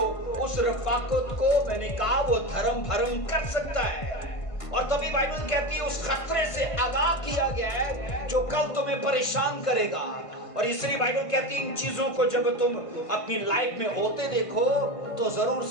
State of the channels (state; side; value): late; right; 1.5 ms